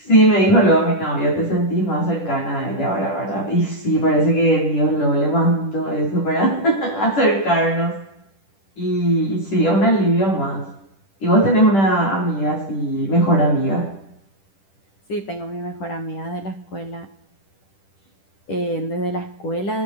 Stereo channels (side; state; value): right; late; 10 ms